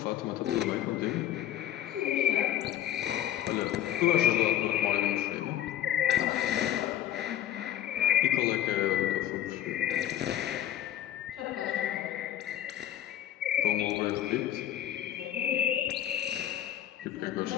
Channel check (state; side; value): quieter; right; 11.8 dB